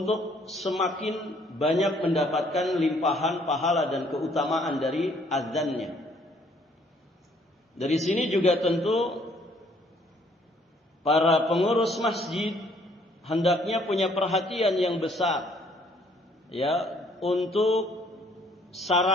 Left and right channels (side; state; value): both; normal; correlation 0.63